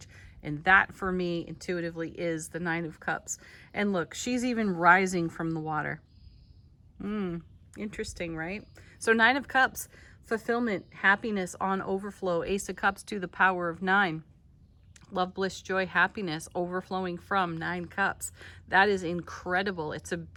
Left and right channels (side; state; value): both; identical; correlation 1.00